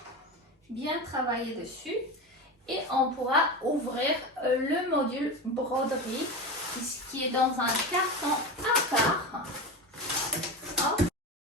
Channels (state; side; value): normal; both; correlation 0.23